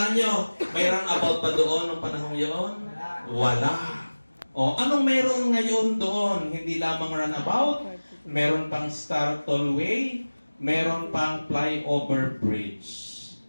nyo, may roundabout pa doon ng panahon yun? Wala. O anong meron ngayon doon? Hindi lamang roundabout, meron pang Star Tollway, meron pang flyover bridge.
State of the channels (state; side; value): inverted; both; correlation -1.00